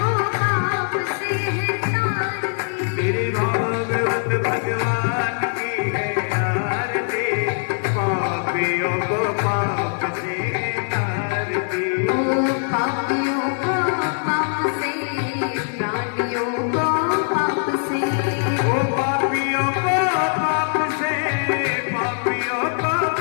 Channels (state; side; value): silent; right; 64 dB below the other